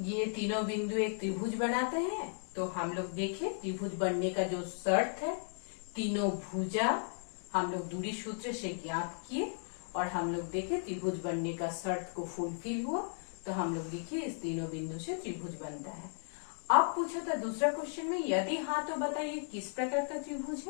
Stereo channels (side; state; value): right; silent; digital silence